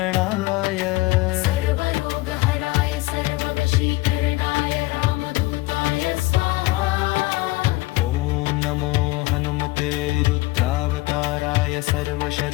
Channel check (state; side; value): quieter; right; 20.2 dB